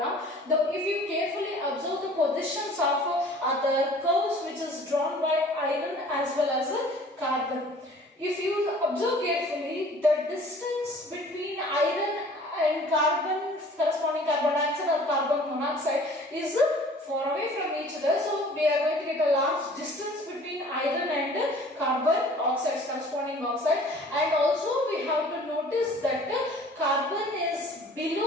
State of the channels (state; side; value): normal; both; correlation 0.49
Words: if you carefully observe the positions of other curves which is drawn by iron as well as carbon. If you observe carefully, the distance between iron and carbon, corresponding carbon dioxide or carbon monoxide, is far away from each other. So we are going to get a large distance between iron and carbon oxides, corresponding oxide. And also we have to notice that carbon is